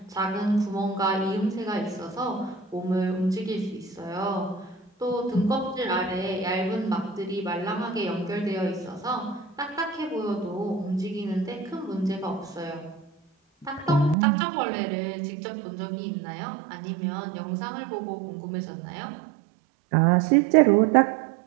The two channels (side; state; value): left; drops out; at 14.2 s